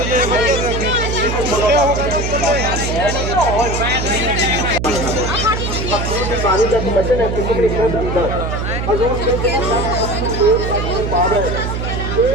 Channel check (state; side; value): noise; right; hum, 3 dB below the sound